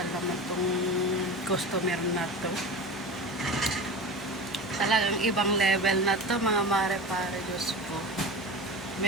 naman tong customer na to. Talagang ibang level na to, mga mare-pare, Diyos ko.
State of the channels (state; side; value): normal; both; correlation 0.30